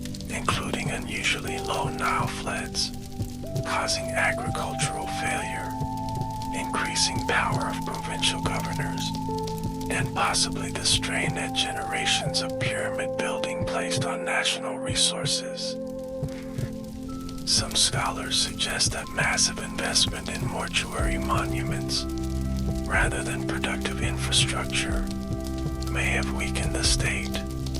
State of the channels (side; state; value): both; identical; correlation 1.00